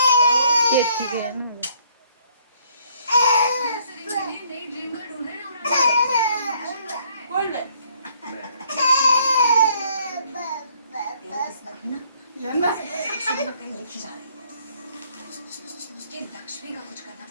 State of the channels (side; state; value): both; inverted; correlation -0.64